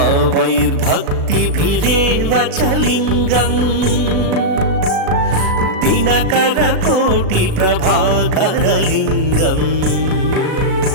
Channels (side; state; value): left; late; 37 ms